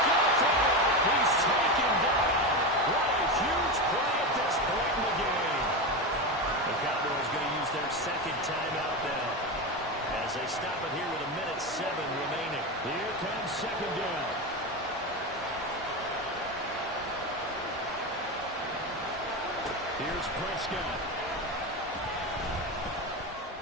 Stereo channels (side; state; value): both; normal; correlation 0.18